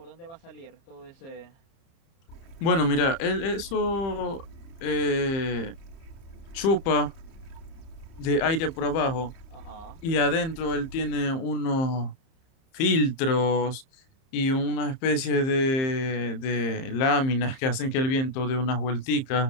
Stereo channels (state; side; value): late; right; 30 ms